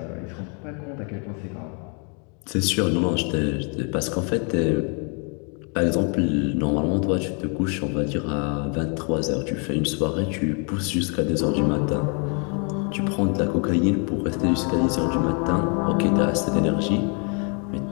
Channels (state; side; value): quieter; right; 37.4 dB